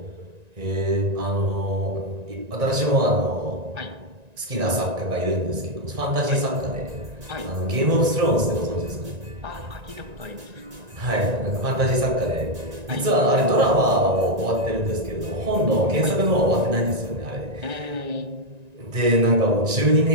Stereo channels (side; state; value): left; late; 1.9 ms